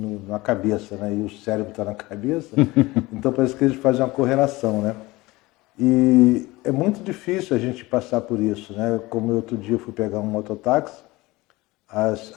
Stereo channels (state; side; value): quieter; right; 20.7 dB